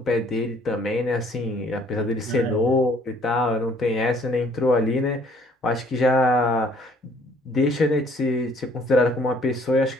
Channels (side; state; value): both; normal; correlation 0.60